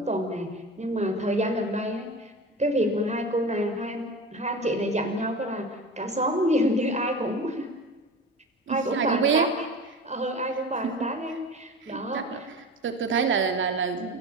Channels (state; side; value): normal; both; correlation 0.33